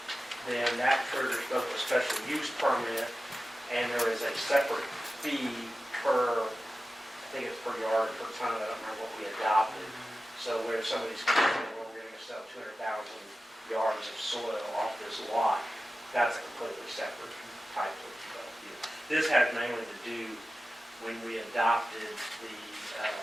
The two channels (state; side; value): normal; both; correlation 0.94